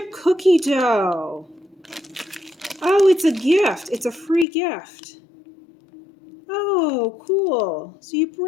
cookie dough. Oh, it's a gift. It's a free gift. Oh, cool. So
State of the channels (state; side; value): drops out; right; at 4.5 s